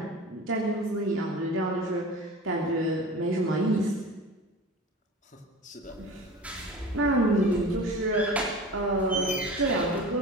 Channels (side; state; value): both; normal; correlation 0.35